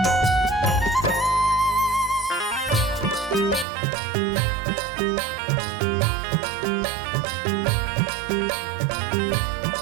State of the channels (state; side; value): drops out; left; at 3.7 s